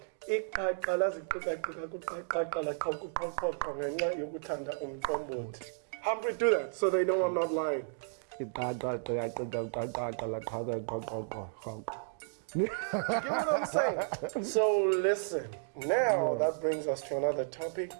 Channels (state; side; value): silent; left; digital silence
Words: Humphrey, do that so they know I'm not lying. You get what I'm saying? So listen, now that brings us to another topic.